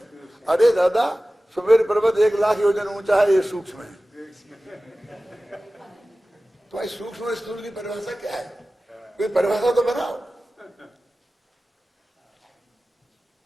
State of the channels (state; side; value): normal; both; correlation 0.96